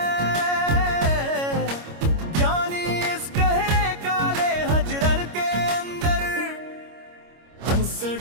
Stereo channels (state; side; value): late; left; 25 ms